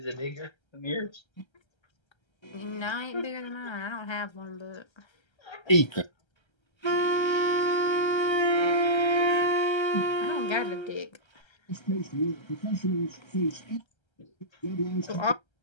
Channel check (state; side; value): late; right; 1.3 ms